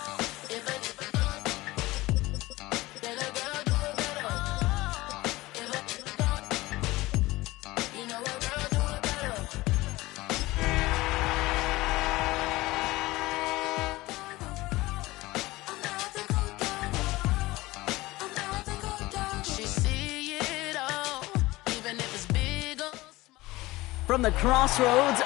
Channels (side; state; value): right; quieter; 19.5 dB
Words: From the crossroads